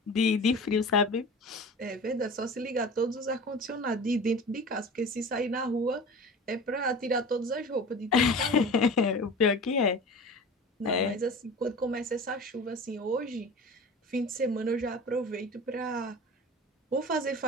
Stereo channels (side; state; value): both; normal; correlation 0.36